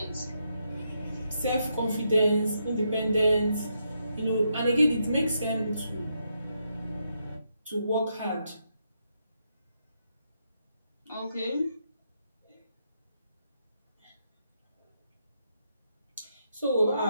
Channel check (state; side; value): inverted; both; correlation -0.80